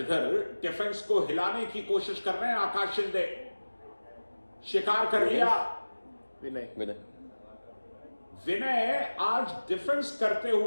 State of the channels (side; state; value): both; inverted; correlation -1.00